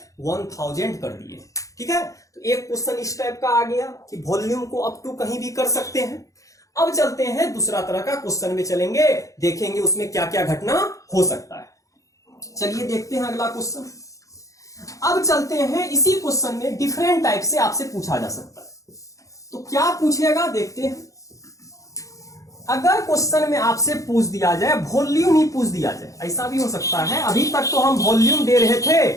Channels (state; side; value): late; right; 0.16 ms